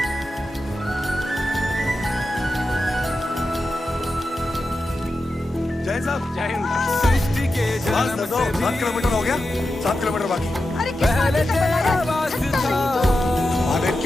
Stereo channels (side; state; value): both; normal; correlation 0.90